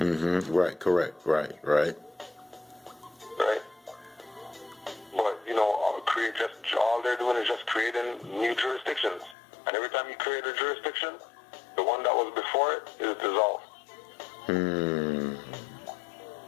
Right, correct. Right. Right? But, all they're doing is just creating new jurisdictions. And every time you create a jurisdiction, the one that was before it is dissolved.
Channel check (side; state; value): right; drops out; at 9.3 s